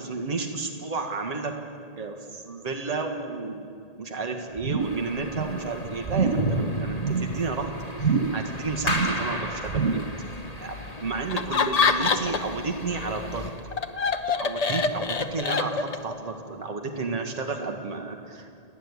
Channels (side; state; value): right; late; 1.8 ms